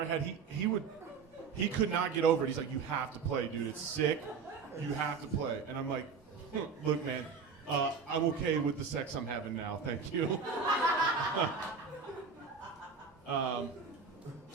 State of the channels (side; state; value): left; quieter; 5.5 dB